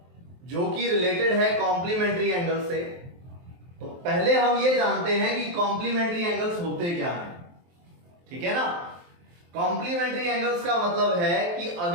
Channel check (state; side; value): late; left; 23 ms